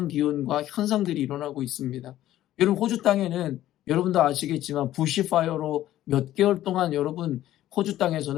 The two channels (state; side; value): quieter; right; 13.6 dB